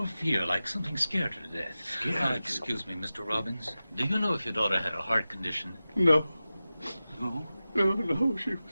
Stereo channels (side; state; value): both; inverted; correlation -0.95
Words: fear, like something scared her to death. Scared? Excuse me, Mr. Robbins. Do you know if your daughter had a heart condition? No. No? No, she